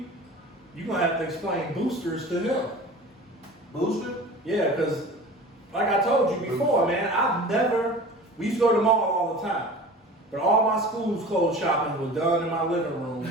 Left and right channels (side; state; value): both; normal; correlation 0.39